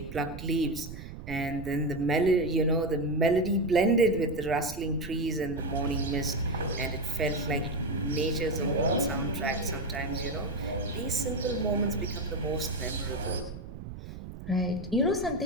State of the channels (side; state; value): right; noise; rumble, 11 dB below the sound